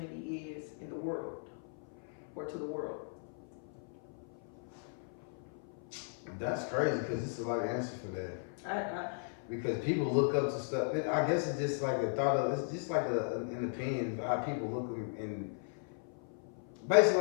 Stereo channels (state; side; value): silent; right; 53 dB below the other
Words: is in the world, or to the world? That's crazy because it's a lot of answers for that. I Because people look up to stuff. I guess it's just like a thought of. It's just like an opinion of how people look, and basically